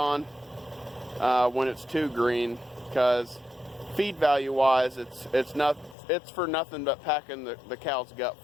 when it's too green, because feed value wise, it's for nothing but packing the cow's gut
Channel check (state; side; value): drops out; right; at 6.0 s